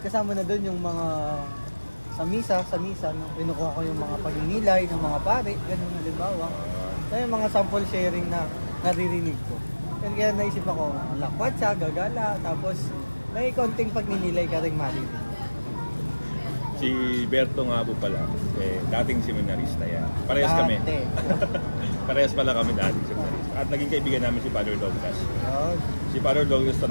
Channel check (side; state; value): both; inverted; correlation -1.00